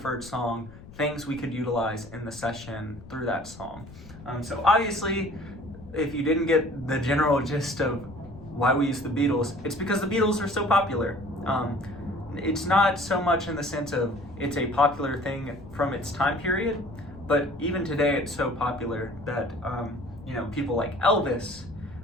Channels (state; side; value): noise; left; rumble, 17 dB below the sound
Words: song, things we could utilize in the session through that song. So obviously, if you didn't get the general gist of why we use the Beatles, it's because the Beatles are so popular. It's not so much in the sense of it's a popular thing from its time period, but even today it's so popular that people like Elvis